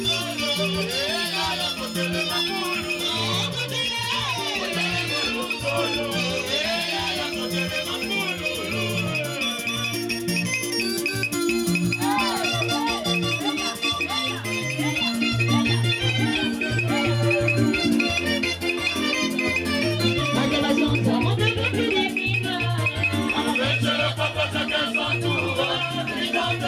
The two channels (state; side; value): identical; both; correlation 1.00